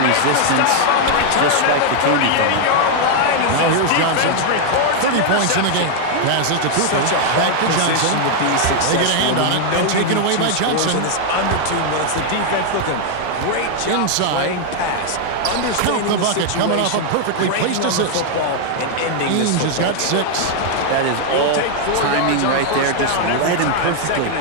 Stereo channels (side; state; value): both; different; correlation 0.00